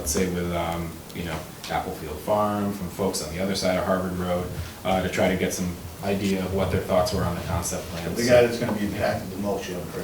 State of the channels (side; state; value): both; identical; correlation 1.00